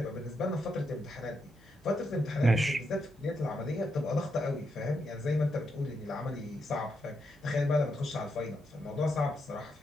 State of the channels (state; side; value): noise; right; hum, 28 dB below the sound